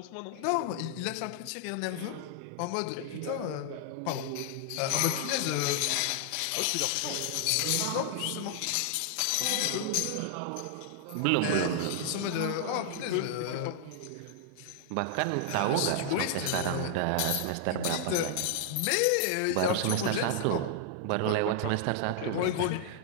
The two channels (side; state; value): both; different; correlation -0.01